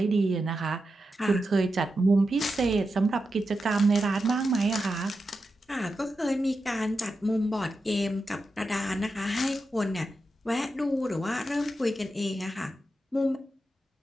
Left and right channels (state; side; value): normal; both; correlation 0.89